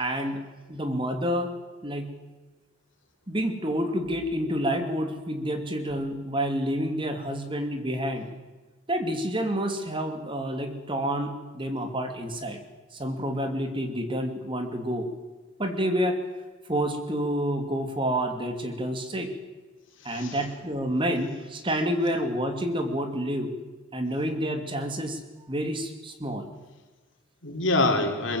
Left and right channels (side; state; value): both; normal; correlation 0.47